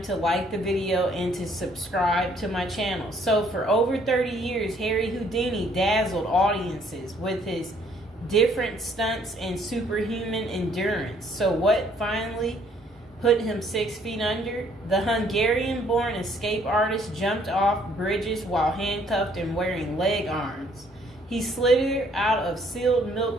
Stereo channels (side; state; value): both; normal; correlation 0.64